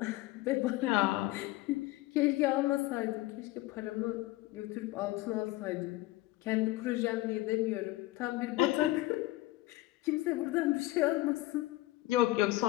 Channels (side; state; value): right; quieter; 18.4 dB